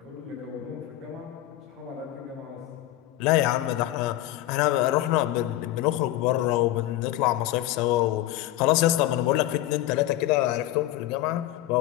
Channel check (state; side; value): quieter; right; 14.6 dB